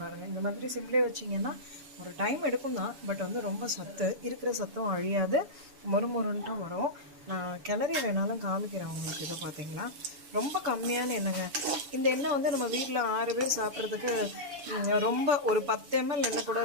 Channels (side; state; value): left; late; 7.0 ms